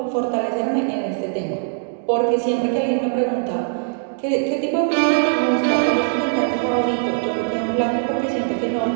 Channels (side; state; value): left; silent; digital silence